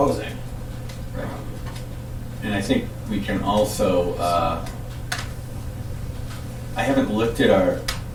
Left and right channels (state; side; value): identical; both; correlation 1.00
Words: Right. And I think we can also, I haven't looked at our